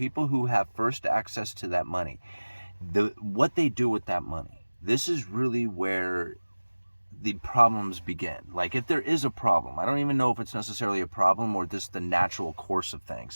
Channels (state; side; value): inverted; both; correlation -1.00